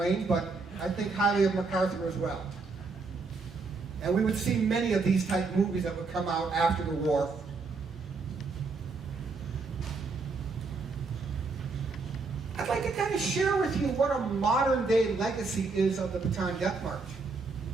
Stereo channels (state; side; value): quieter; left; 4.2 dB